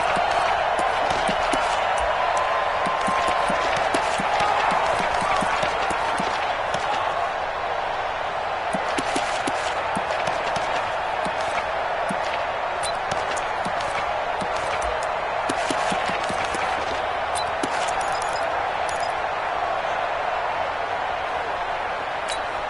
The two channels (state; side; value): identical; both; correlation 1.00